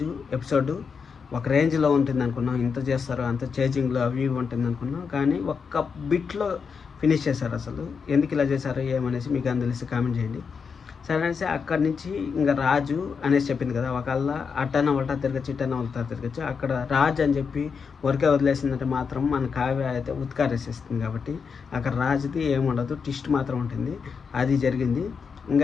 ఎపిసోడ్ ఒక రేంజ్లో ఉంటుంది అనుకున్నాం, ఇంత చేస్తారు, అంత చేంజింగ్లో అవి ఉంటుంది అనుకున్నాం, కానీ ఒక్క బిట్లో ఫినిష్ చేశారు. అసలు ఎందుకు ఇలా చేశారు ఏమనేసి మీకు అని తెలిసి కామెంట్ చేయండి. సరే అనేసి అక్కడి నుంచి ఇంకా రాజు అనేసి చెప్పింది కదా, ఒకళ్ళ అట్టన ఉల్టా తిరగచ్చు, ఇట్టన ఉల్టా తిరగచ్చు. అక్కడ రాజు అని చెప్పి ఊరికే వదిలేసిందంటే మాత్రం మన కావ్య అయితే ఉత్కారేసేస్తుంది. కాబట్టి అక్కడ రాజుది ఏముండదు, ట్విస్ట్ మాత్రం ఉంటుంది. అది జరిగింది.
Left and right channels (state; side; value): quieter; right; 5.8 dB